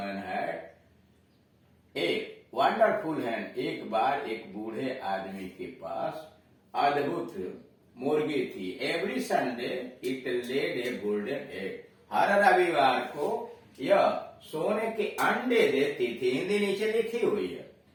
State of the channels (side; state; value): both; identical; correlation 1.00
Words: had a wonderful hen, एक बार एक बूढ़े आदमी के पास अद्भुत मुर्गी थी। Every Sunday it laid a golden egg, हर रविवार को यह सोने के अंडे देती थी। हिंदी नीचे लिखी हुई है।